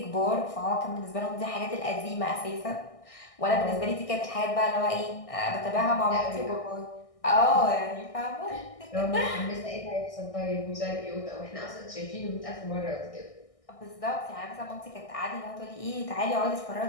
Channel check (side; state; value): right; late; 1.6 ms